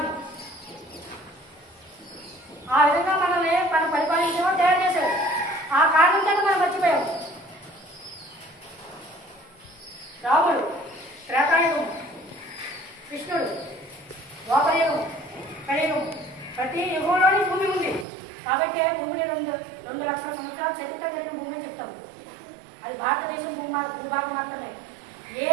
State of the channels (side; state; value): left; drops out; at 18.1 s